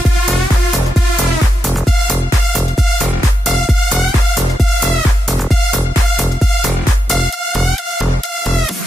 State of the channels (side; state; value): both; normal; correlation 0.85